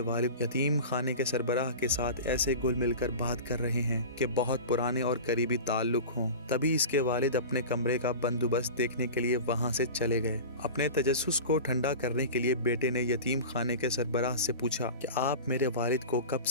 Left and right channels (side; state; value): both; inverted; correlation -0.32